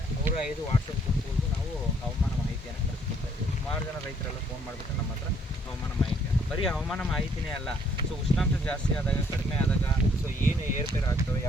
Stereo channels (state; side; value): normal; both; correlation 0.65